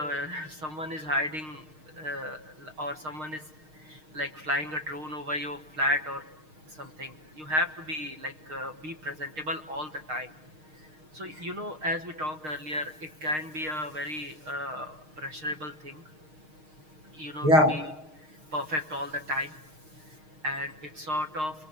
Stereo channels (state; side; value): late; left; 6.5 ms